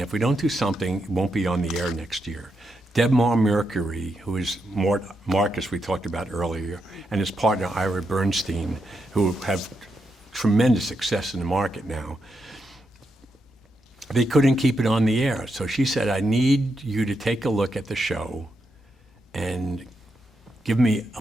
we don't do something, it won't be on the air next year." Debmar Mercury, who is Marcus we talked about earlier, and his partner Ira Bernstein, who have tremendous success in the market now, they couldn't keep it on the air. So she said, "I need you to take a look at the show and give me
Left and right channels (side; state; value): both; normal; correlation 0.83